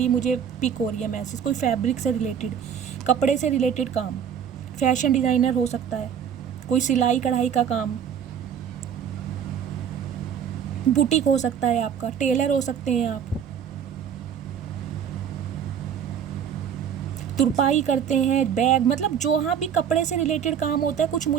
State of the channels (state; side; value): quieter; left; 8.2 dB